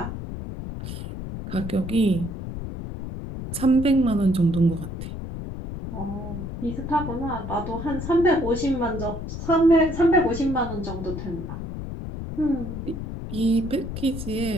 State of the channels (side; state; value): left; noise; rumble, 7 dB below the sound